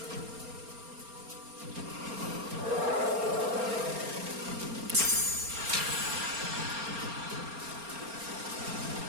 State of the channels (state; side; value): late; left; 4.3 ms